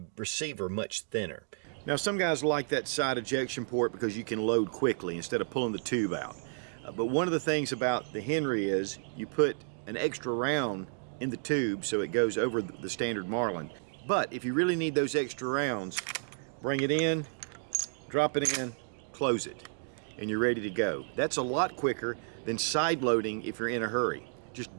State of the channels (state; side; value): silent; left; digital silence